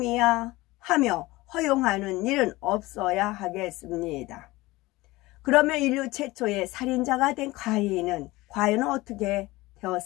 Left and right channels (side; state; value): right; quieter; 20.1 dB